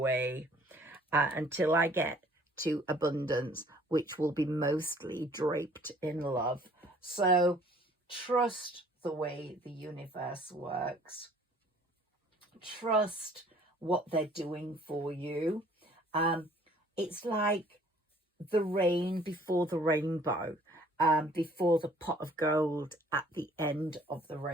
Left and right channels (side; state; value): both; normal; correlation 0.56